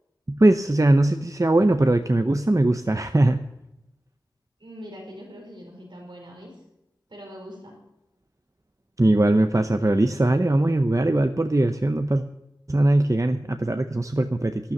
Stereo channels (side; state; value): both; normal; correlation 0.96